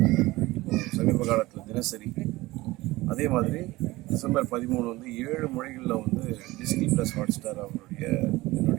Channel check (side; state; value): left; quieter; 19.5 dB